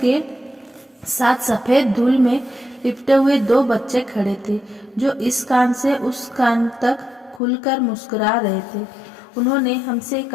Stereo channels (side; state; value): right; drops out; at 7.4 s